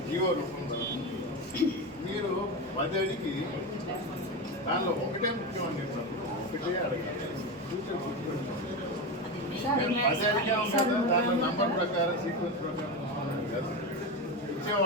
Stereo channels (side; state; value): both; normal; correlation 0.18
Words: జీవో రూపంలో మీరు 10 అడిగి దానిలో ఒకటే ముఖ్యం అని చెప్పినప్పుడు ఒకటే అడగాలి. ఫ్యూచర్ గుర్తుపెట్టుకోండి. 10 అడిగా ఉంటుంది, దాంట్లో నంబర్ ప్రకారం సీక్వెన్స్ ప్రకారం కాదు.